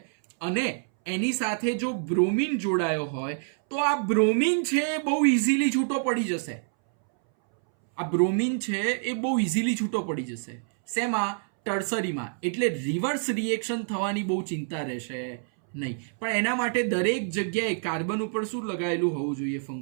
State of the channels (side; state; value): left; silent; 60 dB below the other